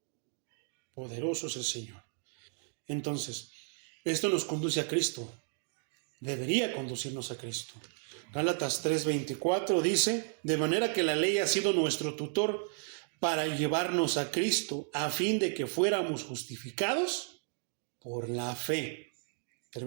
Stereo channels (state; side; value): silent; left; 55 dB below the other